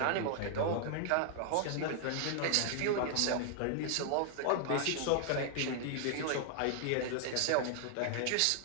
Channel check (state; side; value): different; both; correlation 0.00